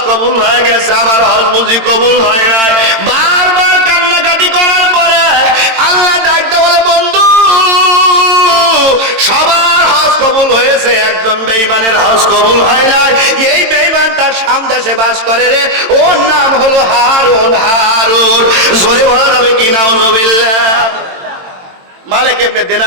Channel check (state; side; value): late; left; 22 ms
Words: কবুল হয়ে গেছে, আমার হজ বুঝি কবুল হয় নাই। বারবার কান্নাকাটি করার পরে আল্লাহ ডাকতে বলে, বন্ধু সবার হজ কবুল হয়েছে, একজন বেঈমানের হজ কবুল হয় নাই। এই বেঈমানটা শাম দেশে বাস করে রে, ওর নাম হলো হারুন। হারুন, জোরে বলা যাবে কি নাউজুবিল্লাহ। মালিক ইবনে